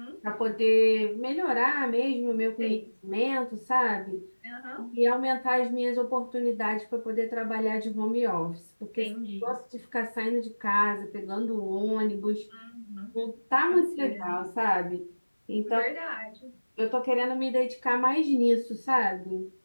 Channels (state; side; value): inverted; both; correlation -1.00